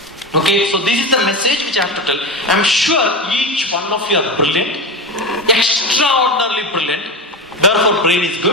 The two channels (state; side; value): normal; both; correlation 0.21